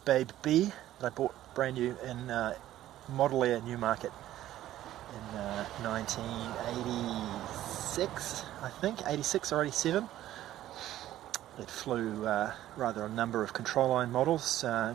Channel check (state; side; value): quieter; left; 13.5 dB